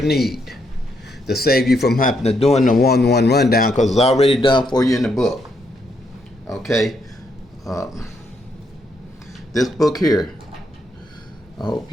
need to save you from having to doing the 1-1 rundown, because it's already done for you in the book. Okay. This book here, I hope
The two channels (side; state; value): both; normal; correlation 0.76